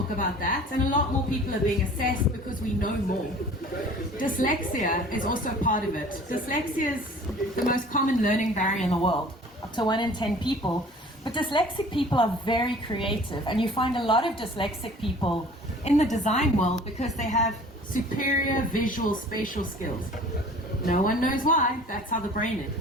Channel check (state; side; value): normal; both; correlation 0.47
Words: about that, and a lot more people are being assessed because we know more. Dyslexia is also part of it. Dyslexia is the most common learning barrier in the world, up to 1 in 10 people. But dyslexic people are very creative, and you find a lot of dyslexic people in the design world because they have superior visual spatial skills. No one knows why, that's how the brain is.